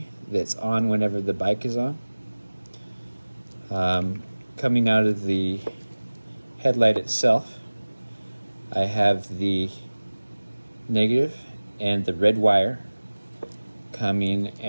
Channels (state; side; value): inverted; both; correlation -1.00